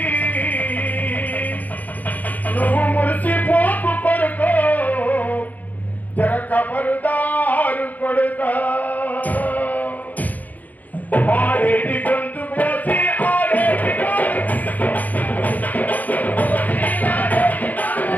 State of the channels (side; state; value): right; late; 0.080 ms